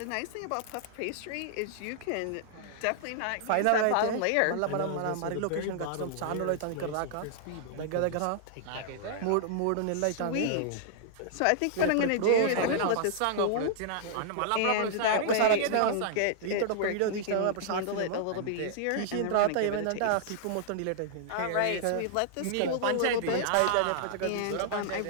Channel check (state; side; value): different; both; correlation -0.01